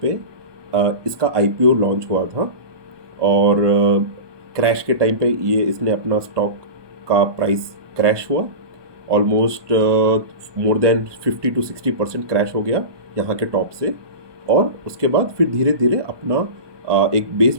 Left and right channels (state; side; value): late; left; 1.2 ms